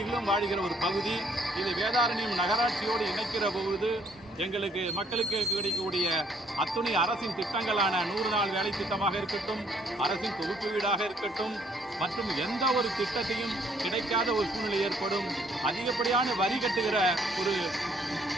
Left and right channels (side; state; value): both; normal; correlation 0.65